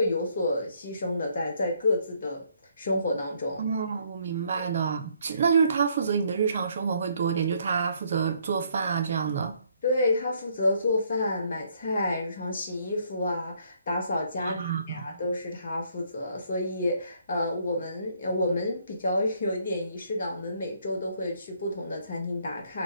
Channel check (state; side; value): inverted; both; correlation -0.67